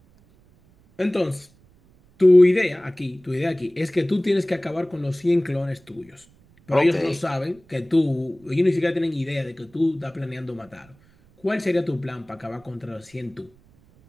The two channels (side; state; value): right; noise; rumble, 30 dB below the sound